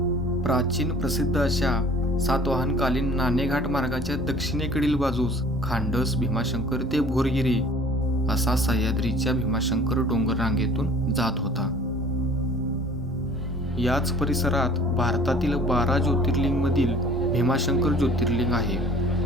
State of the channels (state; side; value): normal; both; correlation 0.49